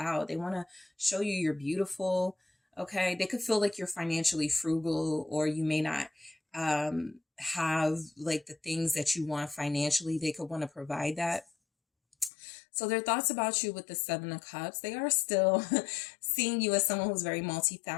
They want to show you you're beautiful. Okay. They could feel like you're financially frugal, or you may not have like the things that you want financially. They could want to provide that. So their thoughts about you with the Seven of Cups, they are still seeing you as someone who's very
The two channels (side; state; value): right; drops out; at 12.3 s